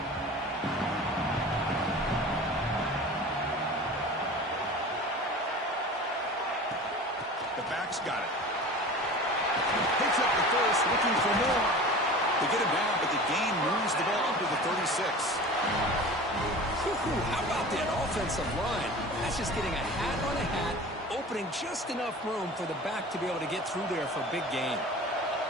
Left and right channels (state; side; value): normal; both; correlation 0.37